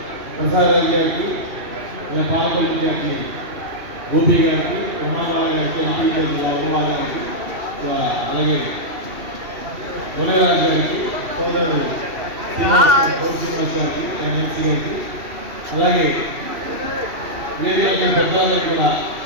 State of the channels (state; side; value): late; left; 2.7 ms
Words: ప్రసాద్ రాజు గారికి, పాలకొల్లు ఇన్ఛార్జి గోపి గారికి, ప్రమాదాల గారికి, ఎంపీ అగర్వాల్ గారికి, అలాగే మునగరాజు గారికి, సోదరుడు శ్రీనివాస్ గారికి, ఎంపీ గారికి, అలాగే పెద్దవాళ్ళకి కూడా